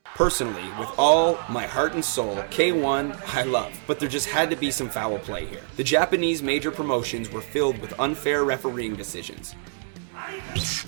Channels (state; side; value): silent; left; 62 dB below the other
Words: Personally, with all my heart and soul, K1 I love, but there just had to be some foul play here. The Japanese major promotions were filled with unfair refereeing decisions.